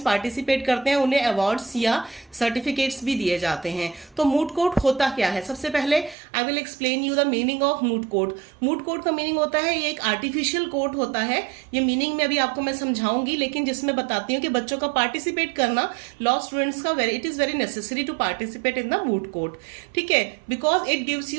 पार्टिसिपेट करते हैं उन्हें अवार्ड्स या सर्टिफिकेट्स भी दिए जाते हैं। तो मूट कोर्ट होता क्या है? सबसे पहले I will explain you the meaning of moot court. Moot court का मीनिंग होता है, ये एक आर्टिफिशियल कोर्ट होता है। ये मीनिंग में अभी आपको मैं समझाऊंगी, लेकिन जिसमें बताती हूँ कि बच्चों का पार्टिसिपेट करना, लॉ स्टूडेंट्स का it is very necessary to participate in the moot court. ठीक है, because it gives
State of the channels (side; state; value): left; drops out; at 6.2 s